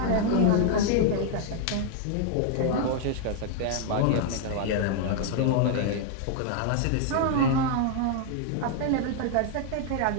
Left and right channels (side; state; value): both; different; correlation 0.00